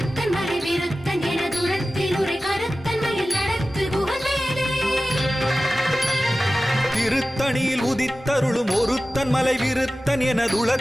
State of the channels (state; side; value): normal; both; correlation 0.95